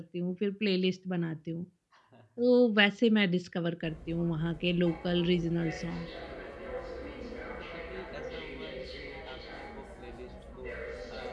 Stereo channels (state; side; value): identical; both; correlation 1.00